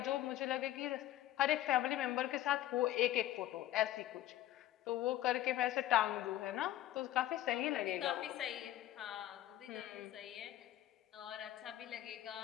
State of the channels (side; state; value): right; quieter; 13.8 dB